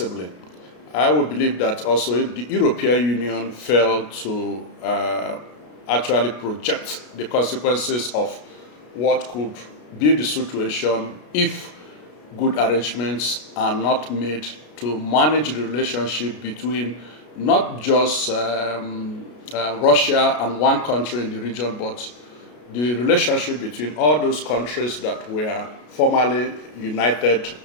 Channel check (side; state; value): right; late; 33 ms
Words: I would believe that also if the European Union failed to actually project the consequences of what could be the situation if good arrangements are not made to manage the relationship between not just Russia and one country in the region, but the relationship between all those countries that were formerly united